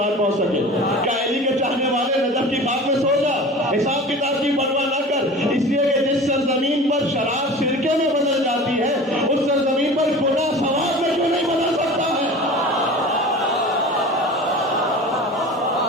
پہنچ سکے. کہ علی کے چاہنے والے نجف کی خاک میں سو جا، حساب کتاب کی پرواہ نہ کر، اس لیے کہ جس سرزمین پر شراب سرکے میں بدل جاتی ہے، اس سرزمین پر گناہ ثواب میں کیوں نہیں بدل سکتا ہے؟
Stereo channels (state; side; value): normal; both; correlation 0.37